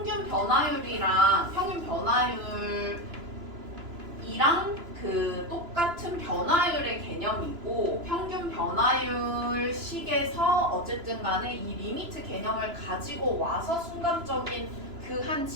변화율이랑 그 똑같은 변화율의 개념이고 평균 변화율 식에서 어쨌든 간에 이 리미트 개념을 가지고 와서 순간적인 그 한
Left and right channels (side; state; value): left; late; 2.9 ms